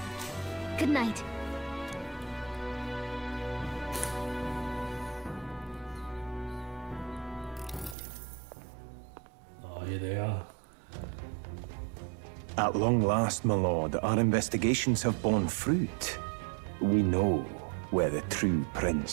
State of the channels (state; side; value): drops out; left; at 8.0 s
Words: Good night. Oh, here they are. At long last, my lord, our investigations have borne fruit. We know where the true